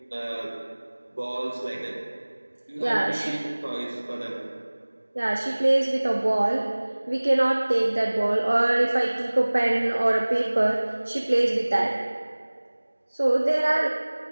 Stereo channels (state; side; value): inverted; both; correlation -1.00